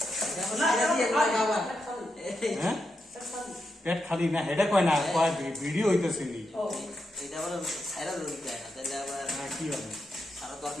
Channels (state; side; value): normal; both; correlation 0.85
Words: না হ্যাঁ পেট খালি না হেডে কয় না কয় ভিডিও হইতেছে নি ও এটা আবার ছাইরা দিতে হয় না তাহলে আবার কি হবে সারা